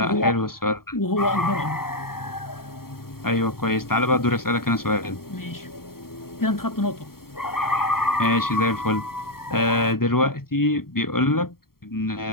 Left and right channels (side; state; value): right; late; 0.93 ms